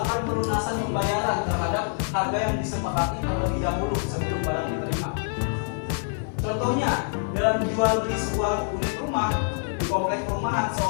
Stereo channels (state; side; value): silent; right; digital silence